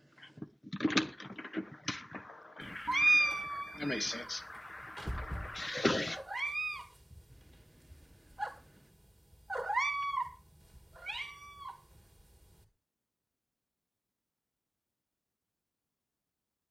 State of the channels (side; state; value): both; normal; correlation 0.96